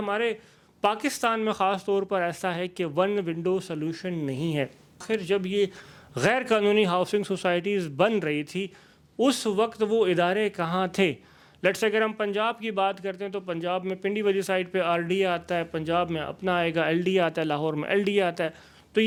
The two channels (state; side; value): identical; both; correlation 1.00